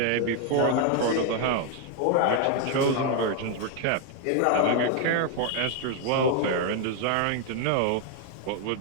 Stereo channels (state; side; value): different; both; correlation 0.01